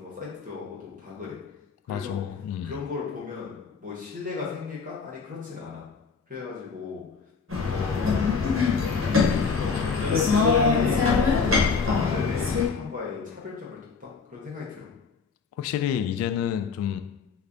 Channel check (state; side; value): quieter; right; 5.2 dB